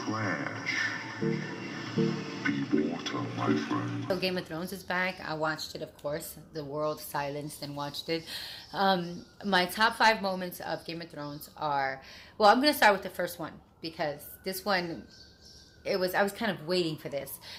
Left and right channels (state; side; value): identical; both; correlation 1.00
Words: Be water, my friend. So Game of Thrones is back. I watched it, of course. The world silenced and watched it. My top 5 moments of Game of Thrones are, well, I'm going to start with the first one because this one, I was kind of waiting for this.